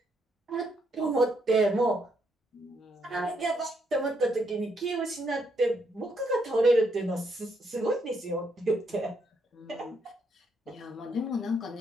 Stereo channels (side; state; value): both; normal; correlation 0.75